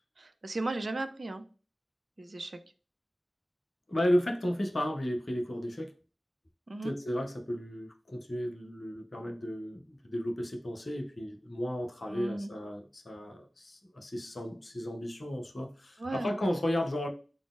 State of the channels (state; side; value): normal; both; correlation 0.96